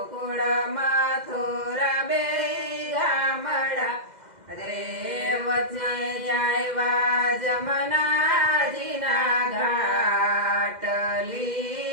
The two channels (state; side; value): late; left; 2.1 ms